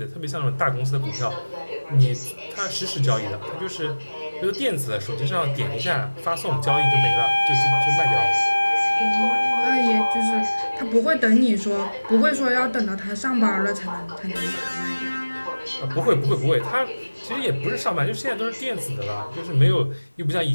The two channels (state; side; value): inverted; both; correlation -1.00